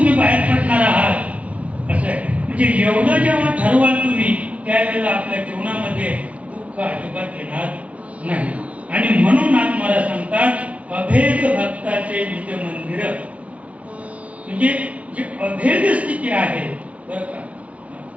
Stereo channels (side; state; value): left; late; 0.065 ms